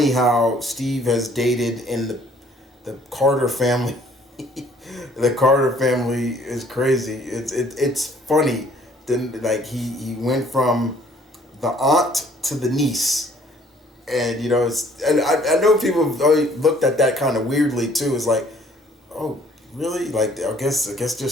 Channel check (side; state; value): both; normal; correlation 0.59